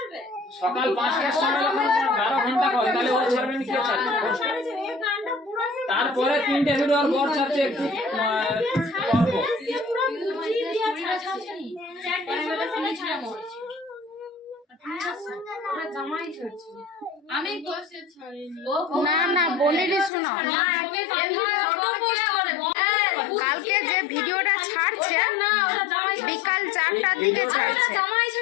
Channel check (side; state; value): right; drops out; at 20.1 s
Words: সময় যখন 12 ঘন্টা করে, তাহলে ও ছাড়বে না, কে ছাড়বে? তারপরে 3টে ভিডিও আর বর ছাড়ছে একটু অল্প। না না বলিনি, শুনো, কালকে যে ভিডিওটা ছাড়ছে বিকাল 4টার দিকে ছাড়ছে,